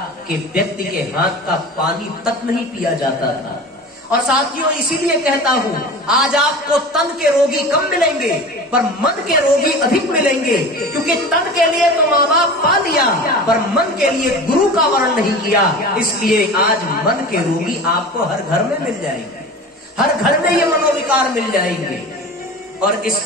के व्यक्ति के हाथ का पानी तक नहीं पिया जाता था। और साथियों, इसीलिए कहता हूं, आज आपको तन के रोगी कम मिलेंगे पर मन के रोगी अधिक मिलेंगे, क्योंकि तन के लिए तो माँ बाप पा लिया पर मन के लिए गुरु का वर्ण नहीं किया। इसलिए आज मन के रोगी आपको हर घर में मिल जाएंगे, हर घर में ये मनोविकार मिल जाएंगे। और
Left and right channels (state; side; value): normal; both; correlation 0.35